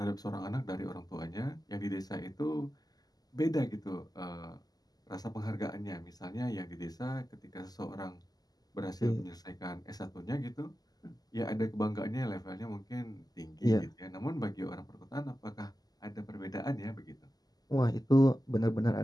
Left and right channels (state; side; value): late; right; 0.19 ms